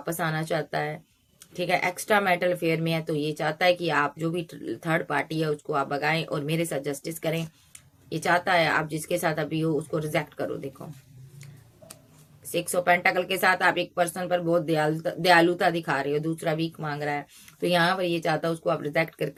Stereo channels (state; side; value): identical; both; correlation 1.00